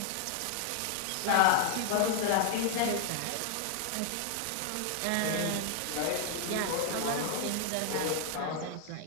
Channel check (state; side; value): different; both; correlation 0.00